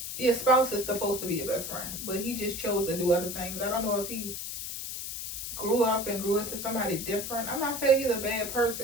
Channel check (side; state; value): left; noise; hiss, 6 dB below the sound